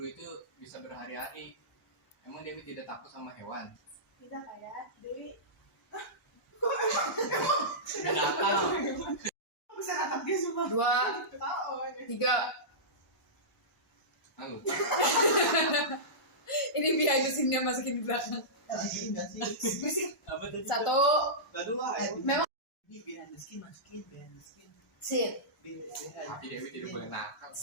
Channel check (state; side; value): normal; both; correlation -0.17